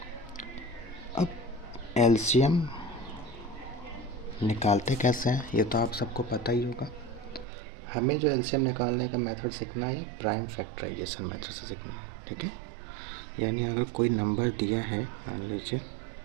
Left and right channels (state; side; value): drops out; left; at 7.5 s